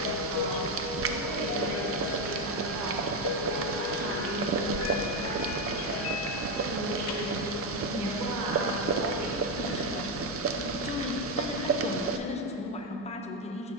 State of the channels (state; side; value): normal; both; correlation 0.08